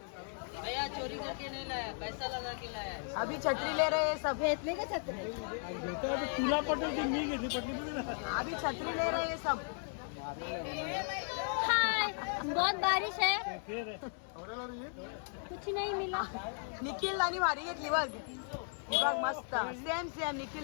चोरी करके नहीं लाया, पैसा लगा के लाया. अभी छत्री ले रहे सब. घेतले का छत्री? तुला पटल मी घेतली अभी छत्री ले रहे सब. हाय, बहुत बारिश है, कुछ नहीं मिला. निखिल आणि भारी घेतली बघ. बघ मस्त. सेम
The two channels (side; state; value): right; silent; 54 dB below the other